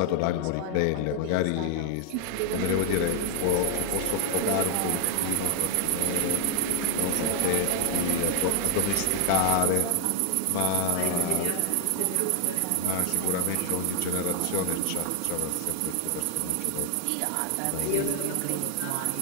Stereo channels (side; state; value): both; different; correlation 0.00